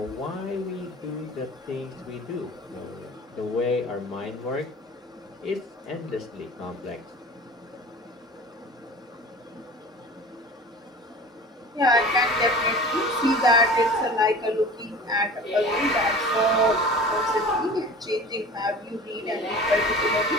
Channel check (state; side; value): normal; both; correlation 0.39